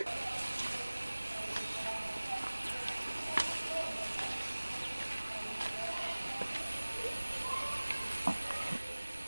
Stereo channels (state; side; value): inverted; both; correlation -1.00